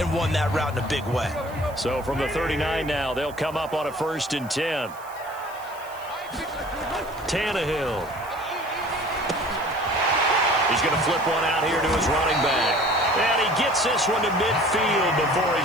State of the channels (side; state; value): right; noise; hiss, 22 dB below the sound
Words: won that route in a big way. So from the 39 now, they'll come up on a 1st and 10. Tannehill. He's going to flip one out here to his running back. And he gets this one to midfield before